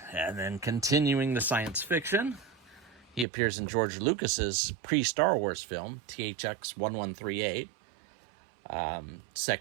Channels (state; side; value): drops out; left; at 3.2 s